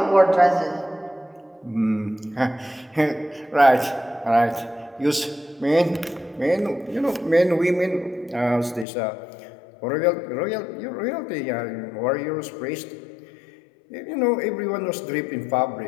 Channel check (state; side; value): drops out; right; at 8.8 s